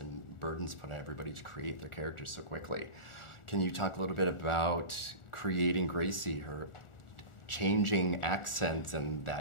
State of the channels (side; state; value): right; late; 1.4 ms